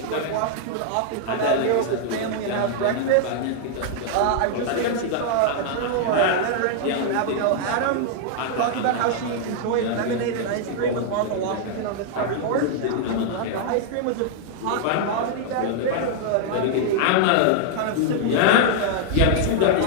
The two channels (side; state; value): both; different; correlation -0.01